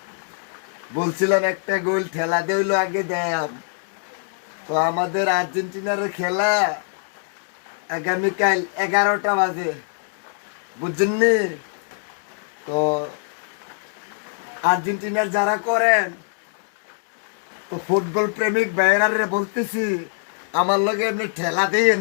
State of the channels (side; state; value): right; silent; digital silence